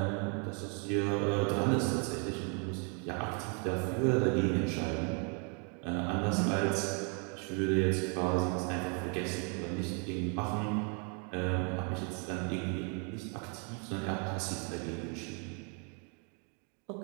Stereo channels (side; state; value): left; quieter; 37.6 dB